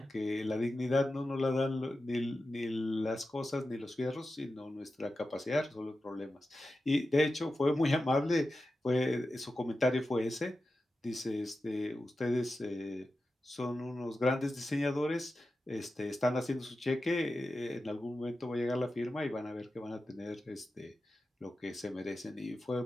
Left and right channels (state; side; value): normal; both; correlation 0.92